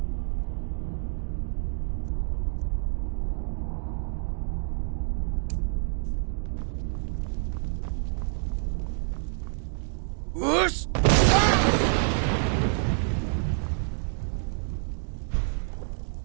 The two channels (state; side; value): silent; left; digital silence